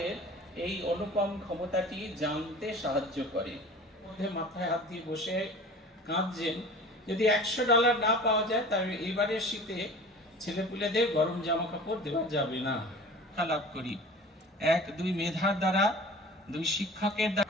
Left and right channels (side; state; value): both; normal; correlation 0.41